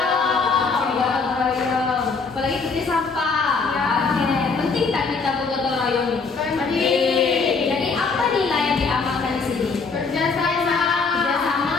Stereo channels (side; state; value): right; quieter; 4.6 dB